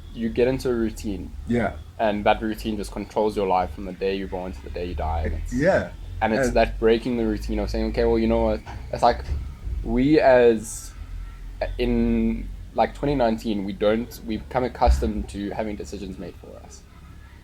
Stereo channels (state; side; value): identical; both; correlation 1.00